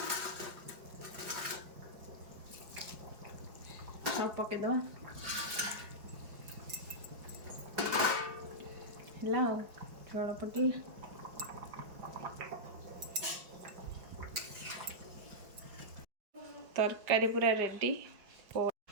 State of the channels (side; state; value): left; late; 5.1 ms